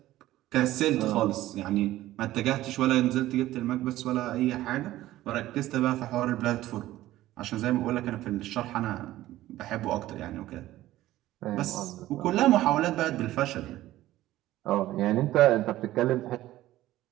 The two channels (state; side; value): quieter; left; 15.3 dB